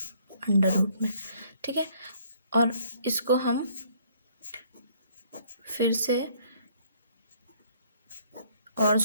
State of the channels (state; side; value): inverted; both; correlation -0.62